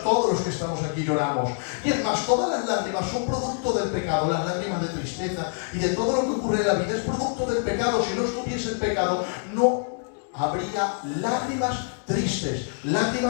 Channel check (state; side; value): silent; right; 61 dB below the other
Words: todos los que estamos aquí, lloramos. Y es más, todos todas las lágrimas son producto del pecado, las lágrimas de tristeza y de todo lo que ocurre en la vida es producto del pecado. Si no estuviese el pecado, no habría lágrimas tristes,